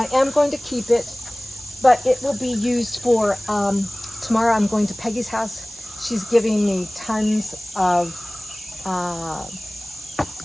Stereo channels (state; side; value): noise; right; hiss, 18 dB below the sound